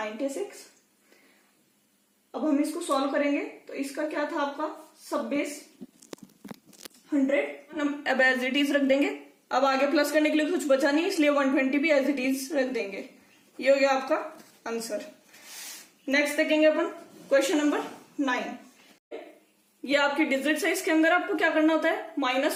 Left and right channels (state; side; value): identical; both; correlation 1.00